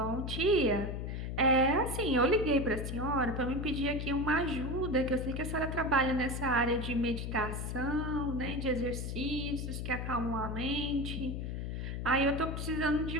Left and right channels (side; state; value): left; noise; hum, 4 dB below the sound